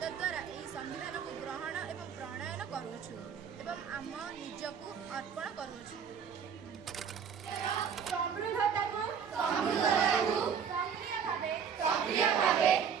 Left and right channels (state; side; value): quieter; left; 7.2 dB